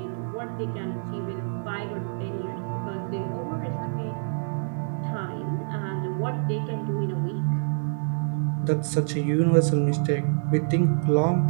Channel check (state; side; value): silent; left; 60 dB below the other